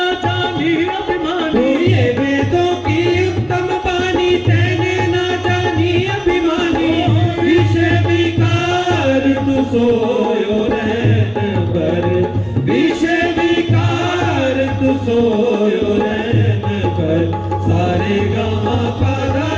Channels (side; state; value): both; identical; correlation 1.00